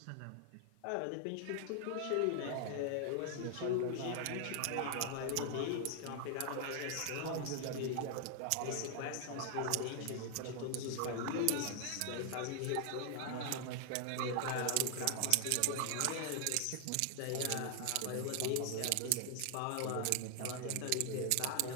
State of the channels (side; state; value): both; different; correlation 0.00